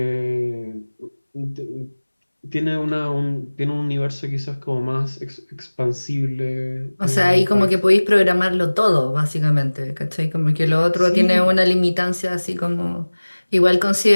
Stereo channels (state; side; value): inverted; both; correlation -1.00